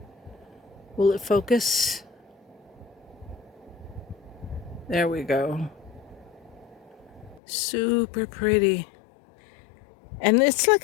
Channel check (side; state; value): right; drops out; at 7.4 s